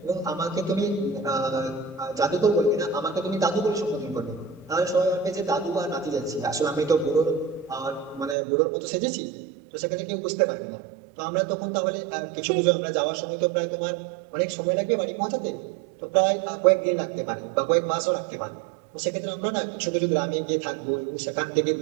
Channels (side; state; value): left; drops out; at 8.3 s